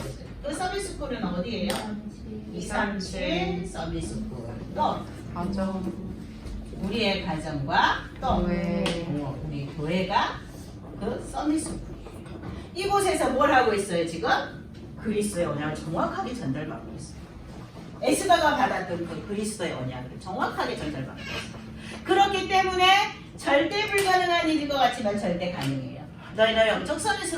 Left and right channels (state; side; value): identical; both; correlation 1.00